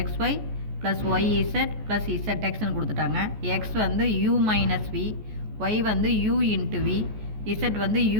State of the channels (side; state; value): left; late; 14 ms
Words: XY ப்ளஸ் YZ ப்ளஸ் ZXன்னு கொடுத்துட்டாங்க. X வந்து U மைனஸ் V, Y வந்து U இன்ட்டு V, Z வந்து